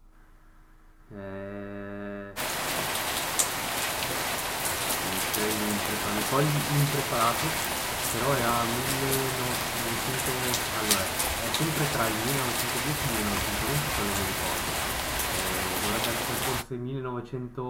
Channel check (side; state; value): both; identical; correlation 1.00